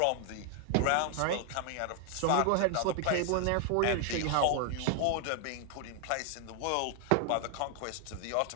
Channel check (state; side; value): different; both; correlation 0.00